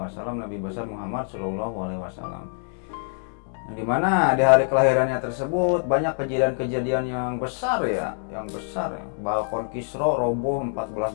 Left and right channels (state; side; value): silent; right; 62 dB below the other